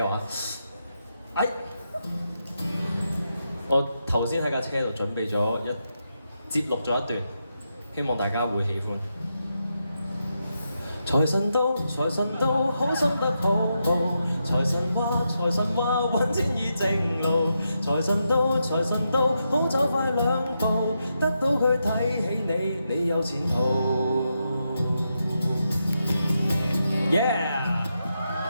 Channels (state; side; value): inverted; both; correlation -0.85